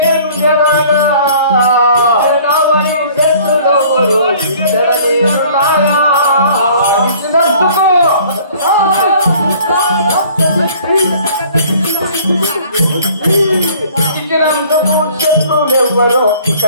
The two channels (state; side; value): inverted; both; correlation -0.52